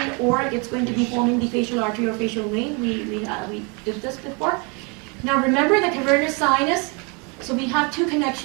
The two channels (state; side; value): quieter; left; 32.2 dB